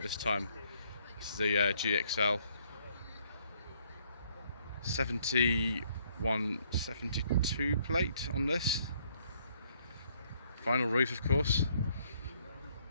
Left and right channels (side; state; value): both; inverted; correlation -0.68